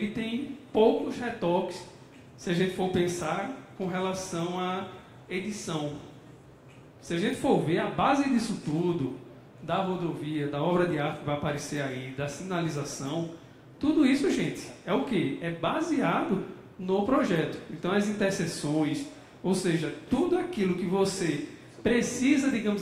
tem poucos retoques, se a gente for pensar com relação à edição. Se a gente for ver a base disso tudo, da rodovia, da obra de arte que vai aparecer aí, da sinalização, tudo isso, gente, é o quê? É baseado no projeto. Então, as interseções, ou seja, tudo aquilo que você precisa,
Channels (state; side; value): identical; both; correlation 1.00